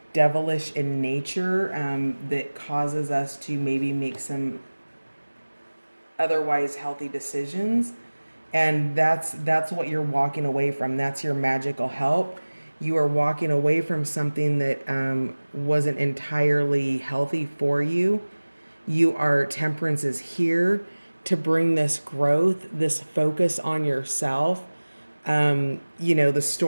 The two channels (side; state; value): both; inverted; correlation -1.00